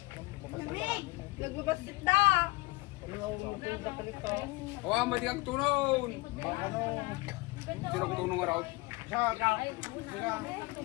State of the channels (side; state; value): right; quieter; 23.5 dB